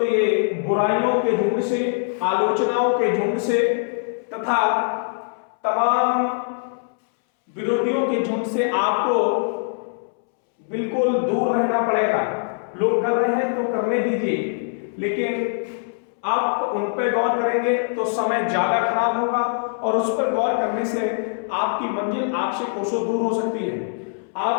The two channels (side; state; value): right; silent; 64 dB below the other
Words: ये बुराइयों के झुंड से, आलोचनाओं के झुंड से तथा तमाम विरोधियों के झुंड से आपको बिल्कुल दूर रहना पड़ेगा। लोग कर रहे हैं तो करने दीजिए, लेकिन आप उन पर गौर करेंगे तो समय ज्यादा खराब होगा और उस पर गौर करने से आपकी मंजिल आपसे कोसों दूर हो सकती है।